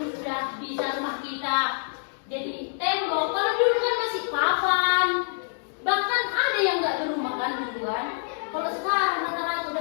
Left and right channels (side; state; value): right; silent; digital silence